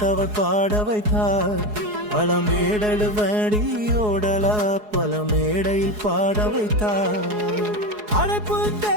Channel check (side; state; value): left; late; 4.7 ms